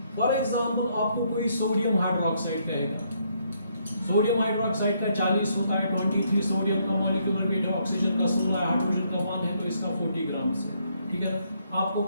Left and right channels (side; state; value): both; inverted; correlation -0.72